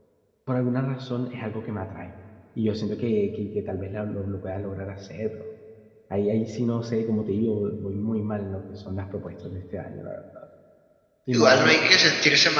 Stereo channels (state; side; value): identical; both; correlation 1.00